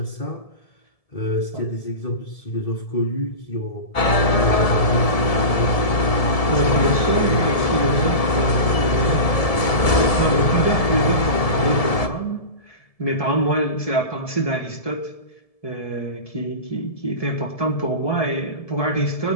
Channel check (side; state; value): right; late; 1.7 ms